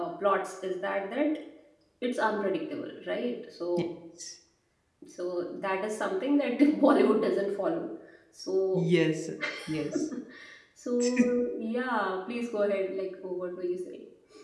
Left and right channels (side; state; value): both; identical; correlation 1.00